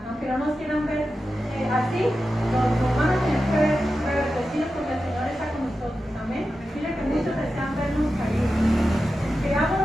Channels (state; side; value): normal; both; correlation 0.91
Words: Aunque no nos quieran ver así, nos van a tener que ver reverdecidos porque el Señor está con nosotros. Amén. Mire que muchos desean vernos caídos.